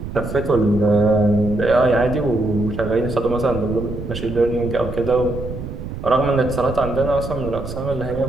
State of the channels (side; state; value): right; noise; rumble, 8 dB below the sound